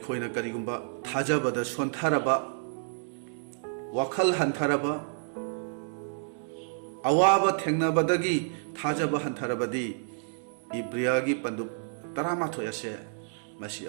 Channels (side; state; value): left; silent; digital silence